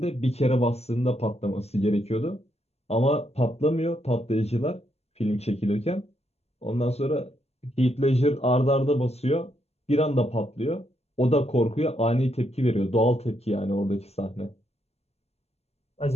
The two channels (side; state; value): right; late; 0.30 ms